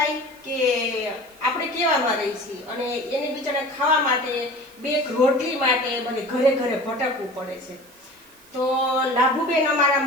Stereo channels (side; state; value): right; noise; hiss, 25 dB below the sound